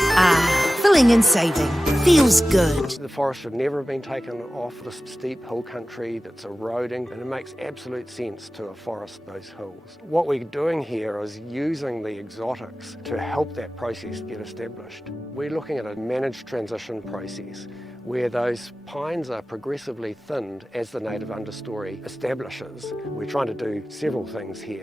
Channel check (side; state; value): both; normal; correlation 0.95